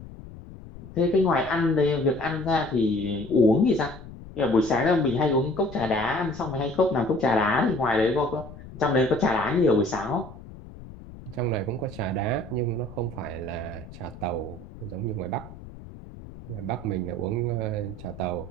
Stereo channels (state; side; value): noise; left; rumble, 16 dB below the sound